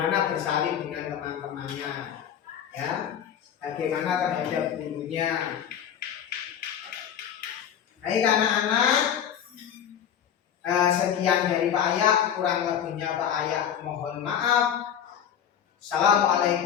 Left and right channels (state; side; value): quieter; right; 9.1 dB